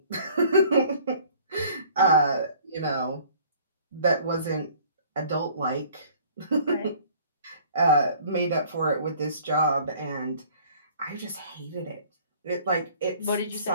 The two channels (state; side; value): inverted; both; correlation -0.53